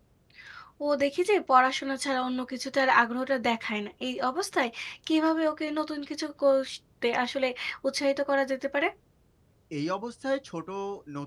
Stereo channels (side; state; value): both; identical; correlation 1.00